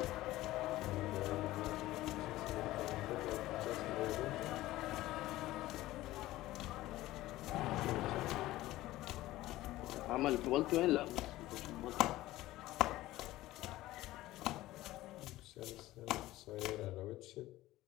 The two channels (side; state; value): right; quieter; 16.6 dB